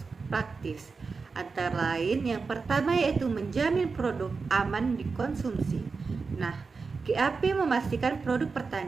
Practice. Antara lain, yang pertama yaitu menjamin produk aman dikonsumsi. Nah, GAP memastikan produk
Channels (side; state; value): left; quieter; 4.6 dB